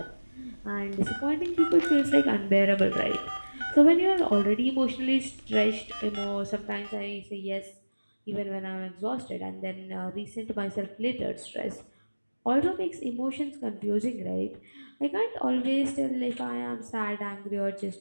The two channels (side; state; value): both; inverted; correlation -1.00